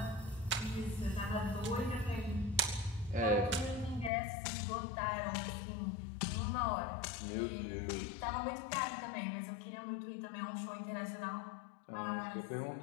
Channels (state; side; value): drops out; right; at 4.1 s